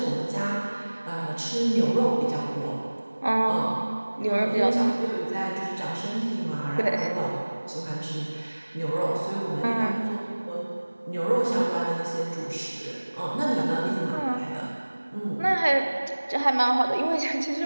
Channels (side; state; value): both; inverted; correlation -1.00